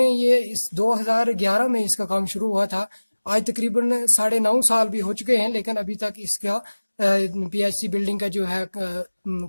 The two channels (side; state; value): both; inverted; correlation -1.00